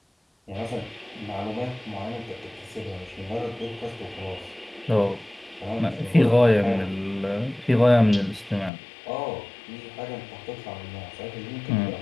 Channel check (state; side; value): drops out; right; at 8.7 s